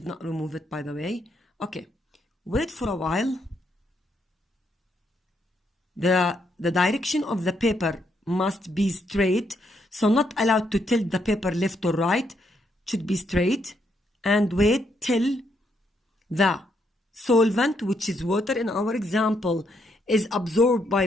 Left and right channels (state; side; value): normal; both; correlation 0.76